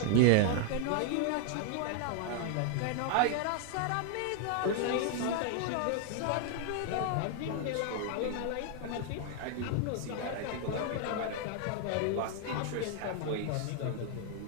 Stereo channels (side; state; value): both; different; correlation 0.00